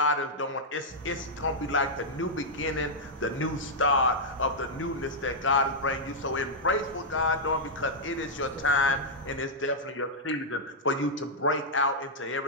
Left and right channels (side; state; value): both; normal; correlation -0.06